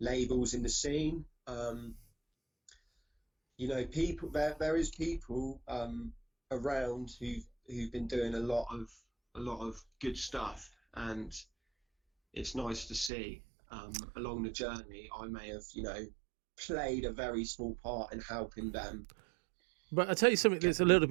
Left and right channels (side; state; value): left; drops out; at 13.1 s